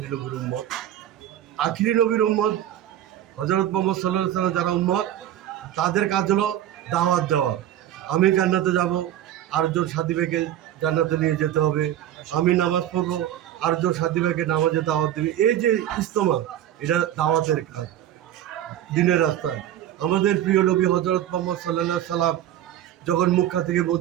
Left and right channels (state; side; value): quieter; left; 11.8 dB